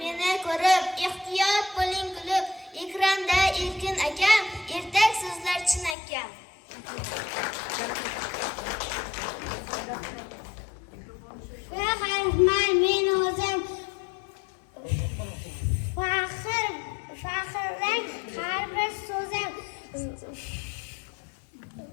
meni ko'rib, ehtiyot bo'ling kulib. Ekranda Erkin akam, ertak so'zlar chinakam. Faxrman men o'zim faxrlang har bir so'zim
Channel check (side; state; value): right; drops out; at 6.0 s